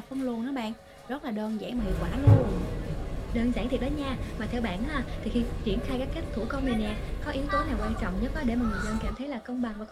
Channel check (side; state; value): both; identical; correlation 1.00